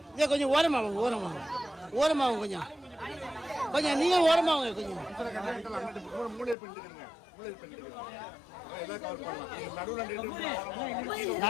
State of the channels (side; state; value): right; drops out; at 6.6 s